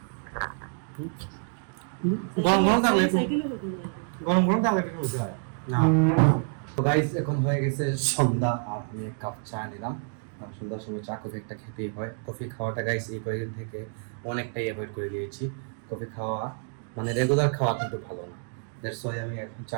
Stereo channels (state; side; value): silent; left; 56 dB below the other